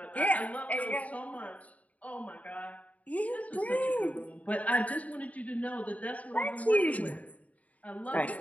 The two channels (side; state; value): right; late; 0.070 ms